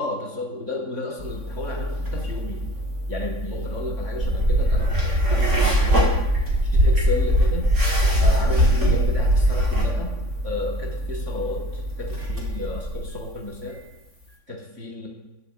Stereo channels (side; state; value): left; late; 3.5 ms